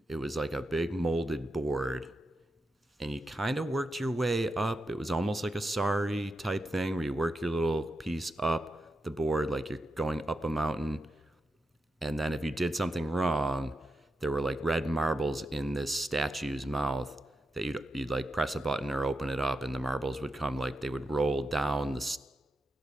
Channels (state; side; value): normal; both; correlation 0.87